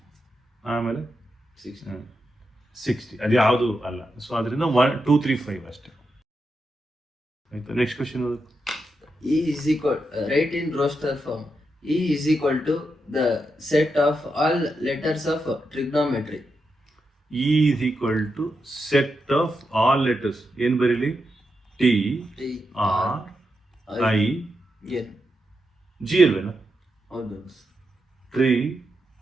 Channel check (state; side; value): normal; both; correlation 0.85